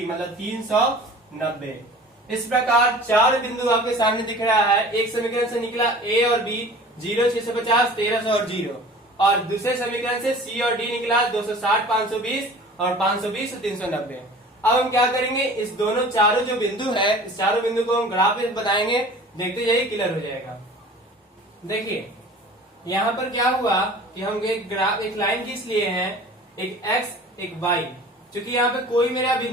मतलब 390। इस प्रकार चार बिंदु आपके सामने दिख रहा है। एक समीकरण से निकला a और b, 0, 650, 1300 और 0, और दूसरे समीकरण से c और d निकला 260, 520 और 520 और 390। अब हम क्या करेंगे? इस दोनों चारों जो बिंदु है, इस चारों बिंदु को हम ग्राफ में बताएंगे, देखते जाइए, क्लियर हो जाएगा। देखिए यहाँ पर क्या हुआ कि हम एक ग्राफ, एक लाइन खींच लिए हैं, एक x एक y, क्योंकि यहाँ पे कोई मेरा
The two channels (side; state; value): both; normal; correlation 0.43